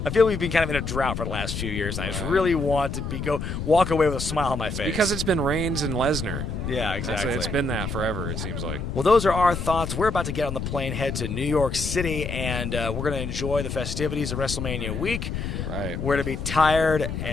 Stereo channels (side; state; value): left; noise; rumble, 4 dB below the sound